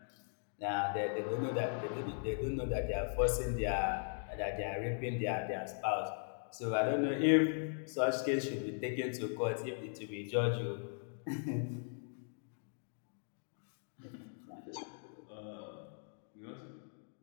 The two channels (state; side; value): silent; right; digital silence